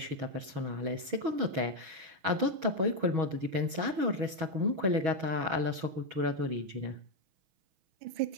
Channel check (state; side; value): late; left; 6.2 ms